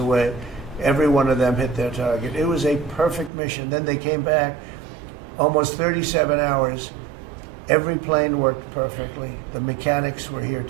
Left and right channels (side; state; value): left; drops out; at 3.3 s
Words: Every one of them hit their target. It was a perfect mission. Then they came back, almost 37 hours. Every plane worked perfectly. The mechanics were here